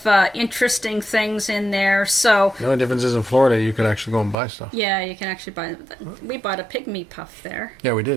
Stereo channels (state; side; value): drops out; left; at 4.4 s